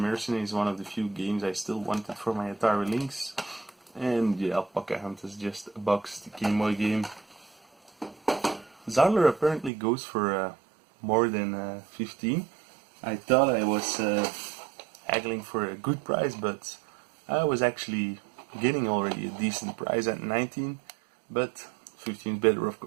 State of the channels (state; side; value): drops out; left; at 9.7 s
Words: is one of the few games I still wanted for my Atari Lynx. And yeah, Alpaca Hunt is just a boxed Game Boy game. Zarlar apparently goes for more than 15. I thought I was haggling for a good price, but I was actually getting already a decent price at 19, but 15 is better, of